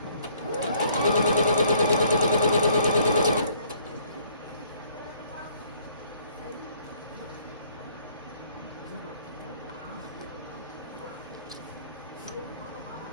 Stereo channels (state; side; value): inverted; both; correlation -0.62